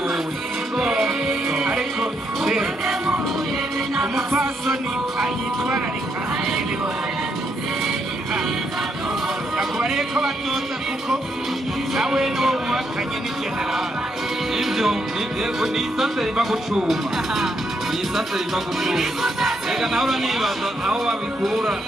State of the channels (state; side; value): normal; both; correlation 0.77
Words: wewe ariko umupfasoni ayitwararika nakubariye ko batoza kuko nawe n'uwo muhakanye ni generali ibyo ni isase riva gucuma ni isase riva gucuma reka nawe uranibaza aho babikura